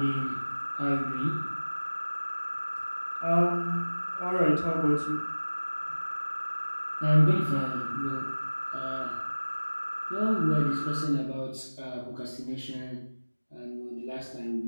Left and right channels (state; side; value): inverted; both; correlation -1.00